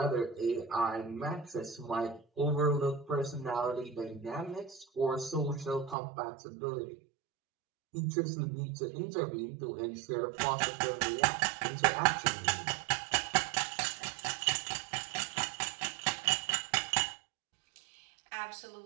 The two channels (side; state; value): left; drops out; at 6.0 s